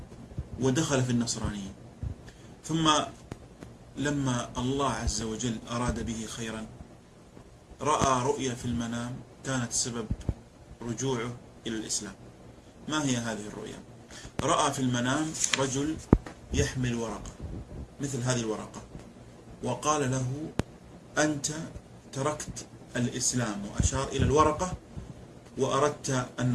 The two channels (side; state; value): both; identical; correlation 1.00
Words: ودخل في النصرانية، ثم لما الله عز وجل أراد به خيرا رأى رؤيا في المنام كانت سبب رجوعه إلى الإسلام. ما هي هذه الرؤيا؟ رأى في المنام رجل يحمل ورقة مثل هذه الورقة، وقال له: أنت تركت الإسلام، وأشار إلى الورقة، وأردت